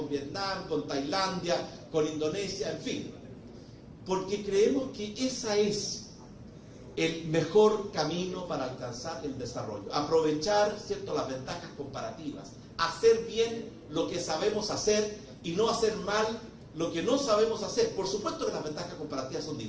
Vietnam, con Tailandia, con Indonesia, en fin. Porque creemos que esa es el mejor camino para alcanzar el desarrollo. Aprovechar, ¿cierto?, las ventajas comparativas. Hacer bien lo que sabemos hacer y no hacer mal lo que no sabemos hacer. Por supuesto que las ventajas comparativas son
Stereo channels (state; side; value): identical; both; correlation 1.00